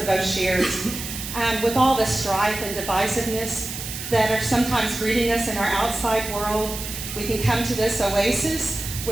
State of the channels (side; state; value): right; noise; hiss, 8 dB below the sound